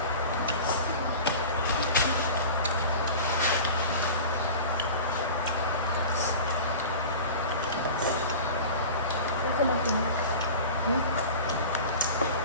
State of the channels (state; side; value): inverted; both; correlation -0.36